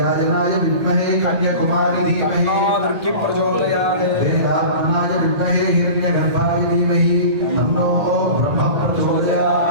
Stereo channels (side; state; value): left; late; 1.8 ms